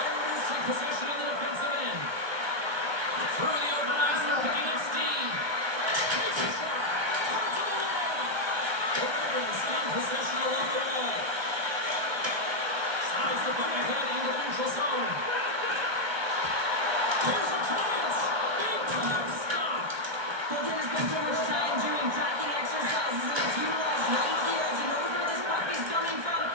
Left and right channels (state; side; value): late; left; 1.2 ms